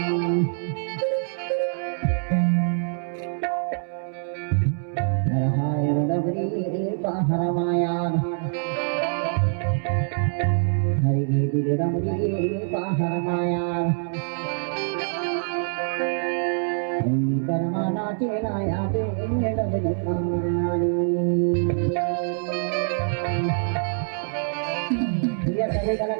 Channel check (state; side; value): silent; left; 62 dB below the other